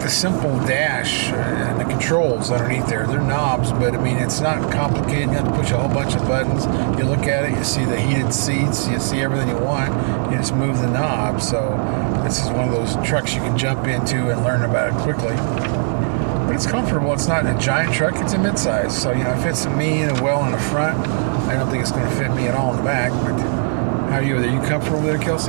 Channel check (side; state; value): left; silent; 58 dB below the other